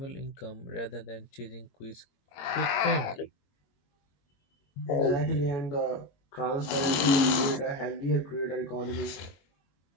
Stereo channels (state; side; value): late; right; 22 ms